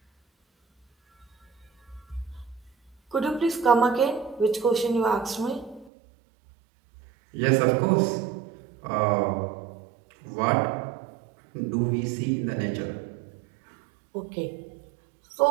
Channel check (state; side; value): drops out; left; at 5.9 s